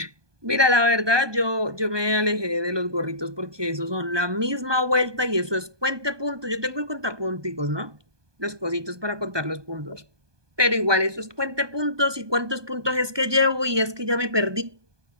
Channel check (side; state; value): left; late; 1.2 ms